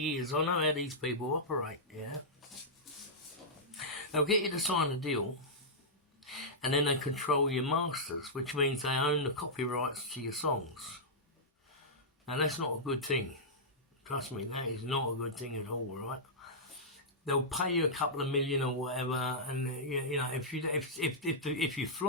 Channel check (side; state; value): both; normal; correlation -0.11